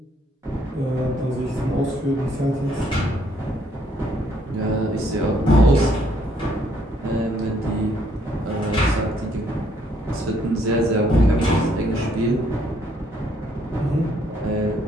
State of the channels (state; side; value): normal; both; correlation 0.68